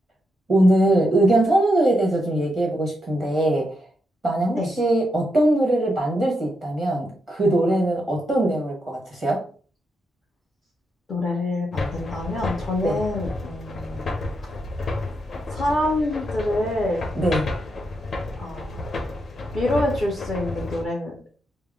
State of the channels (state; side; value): normal; both; correlation 0.83